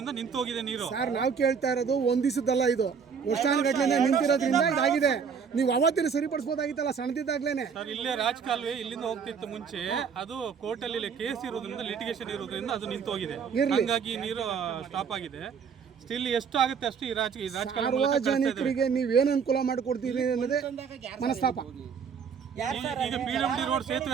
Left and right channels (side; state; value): left; quieter; 6.4 dB